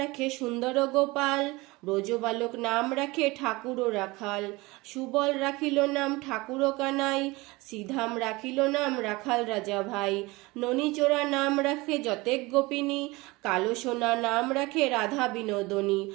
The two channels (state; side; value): quieter; left; 22.6 dB